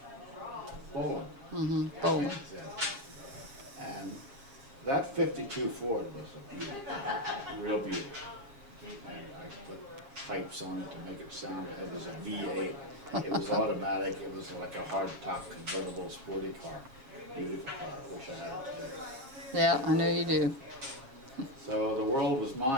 Boland. Boland. Yeah. And that 52 Ford was a beauty, real beauty. And I put pipes on it to make it sound, it was a V8. It was automatic, it was like a hard-top convertible sporty car. Beautiful car, I wish I had it today. Yeah, I know you do. So the world was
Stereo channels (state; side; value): late; left; 7.5 ms